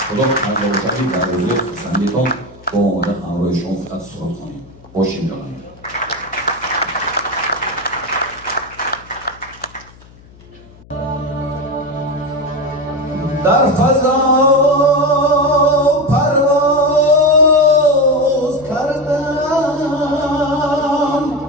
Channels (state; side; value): noise; left; hum, 24 dB below the sound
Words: خدا کرده باشدی در روزی خسندیتان با آمده همراه شما فقط سرود کنیم باشیم جانایی در فضا پرواز کردم